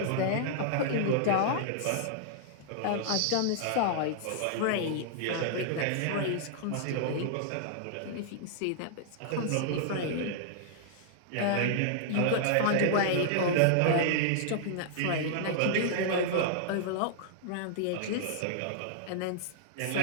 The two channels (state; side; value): different; both; correlation -0.01